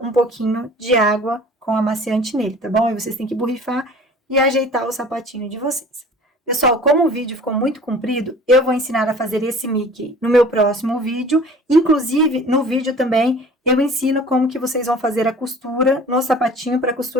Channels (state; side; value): normal; both; correlation 0.45